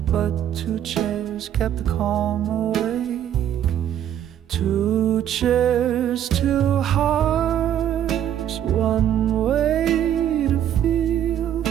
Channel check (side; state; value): left; quieter; 10.5 dB